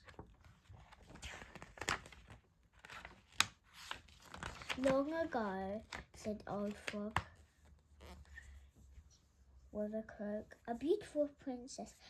Long ago, said Old Frog with a croak, a beautiful princess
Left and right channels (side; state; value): both; identical; correlation 1.00